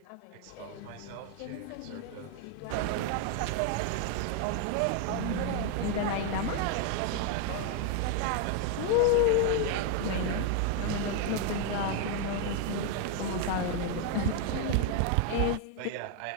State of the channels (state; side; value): different; both; correlation 0.01